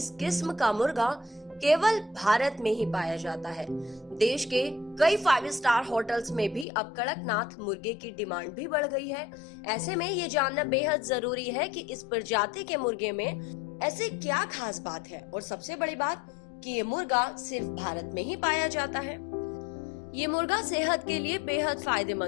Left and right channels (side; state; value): right; drops out; at 6.7 s